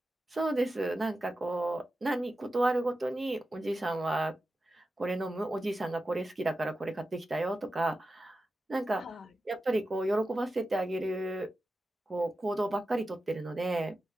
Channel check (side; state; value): both; normal; correlation 0.92